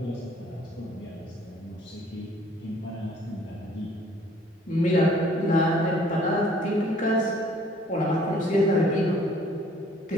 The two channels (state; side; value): normal; both; correlation 0.57